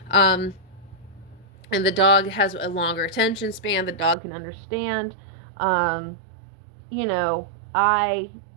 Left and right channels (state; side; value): drops out; left; at 4.2 s